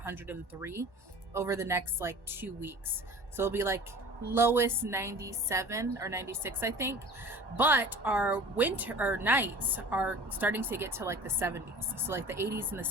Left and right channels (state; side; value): late; left; 1.1 ms